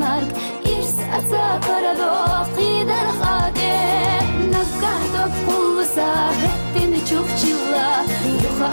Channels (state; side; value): inverted; both; correlation -1.00